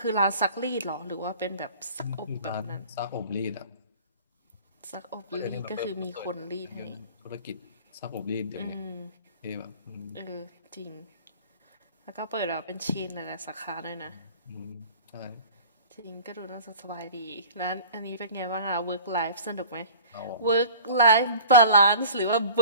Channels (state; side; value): inverted; both; correlation -0.44